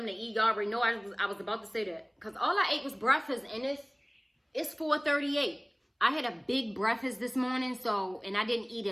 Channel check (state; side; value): identical; both; correlation 1.00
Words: to eat. Y'all already know I was about to say that. Because all I ate was breakfast, and it's 4:38. I had a big breakfast this morning, and I didn't eat